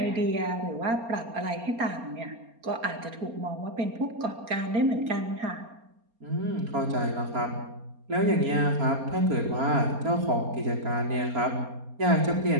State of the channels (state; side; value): late; left; 4.3 ms